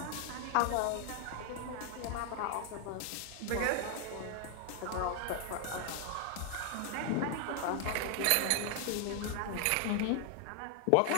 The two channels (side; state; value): both; different; correlation 0.00